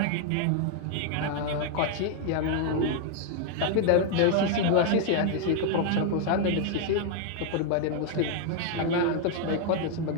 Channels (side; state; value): both; different; correlation 0.00